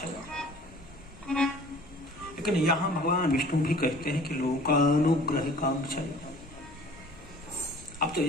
लेकिन यहां भगवान विष्णु भी कहते हैं कि लोकानुग्रह कांक्षा। अब तो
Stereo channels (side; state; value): left; noise; rumble, 23 dB below the sound